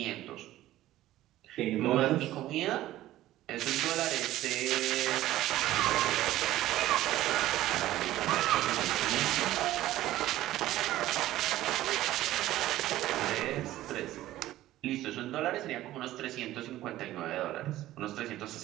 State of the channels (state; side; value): quieter; left; 14.9 dB